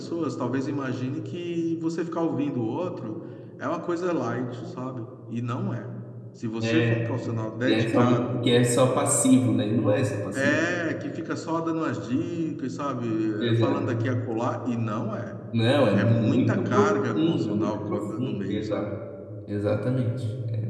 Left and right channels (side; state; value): both; identical; correlation 1.00